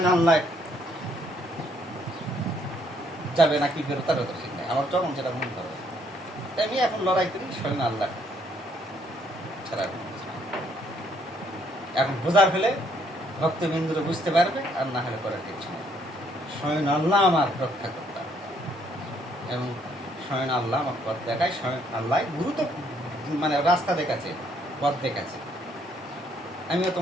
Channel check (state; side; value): normal; both; correlation 0.68